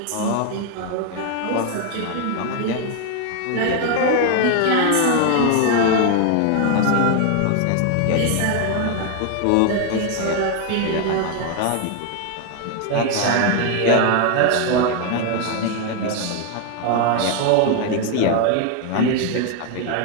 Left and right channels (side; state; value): both; different; correlation 0.01